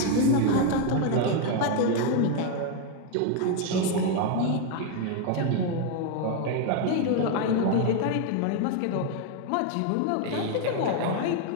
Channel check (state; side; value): different; both; correlation 0.01